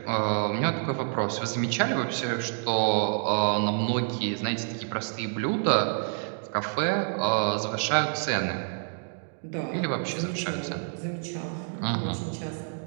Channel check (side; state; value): left; silent; 59 dB below the other